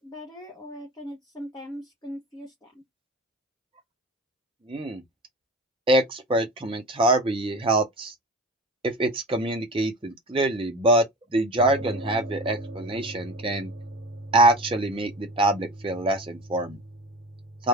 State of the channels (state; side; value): normal; both; correlation 0.35